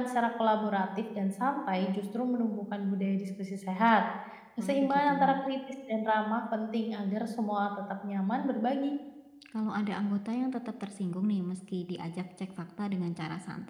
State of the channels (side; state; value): both; identical; correlation 1.00